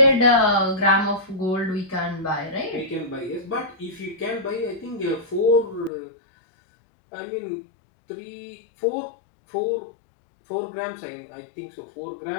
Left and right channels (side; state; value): right; drops out; at 5.9 s